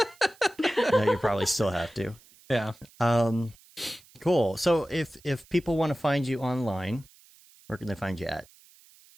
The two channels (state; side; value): noise; right; hiss, 27 dB below the sound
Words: No, you probably still have to. Yeah. Cool. So if people want to find you online, where can they find you at?